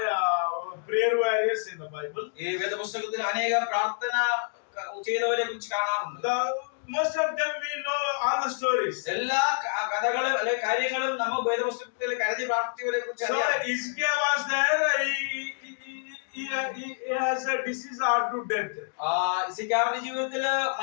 prayer warriors in the Bible. ഈ വേദപുസ്തകത്തിൽ അനേക പ്രാർത്ഥന ചെയ്തവരെ കുറിച്ച് കാണാറുണ്ട്. Most of them we know all the stories. എല്ലാ കഥകളും അല്ലെ കാര്യങ്ങളും നമ്മൾ വേദപുസ്തകത്തിൽ കരുതി പ്രാർത്ഥിച്ചവരെ കുറിച്ച് So അറിയാം. Ezekiel was there. He has a disease or to death. ഇസയ്യാവിന്റെ ജീവിതത്തിൽ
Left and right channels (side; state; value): right; silent; digital silence